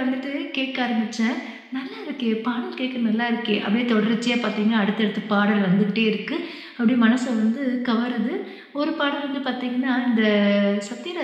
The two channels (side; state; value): both; identical; correlation 1.00